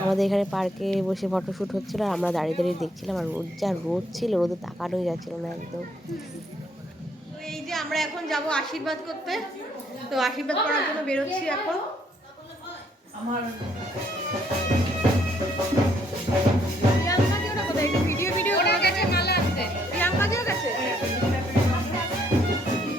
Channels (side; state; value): both; normal; correlation 0.68